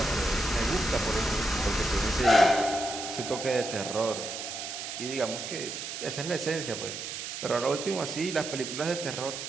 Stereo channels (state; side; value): noise; right; hiss, 6 dB below the sound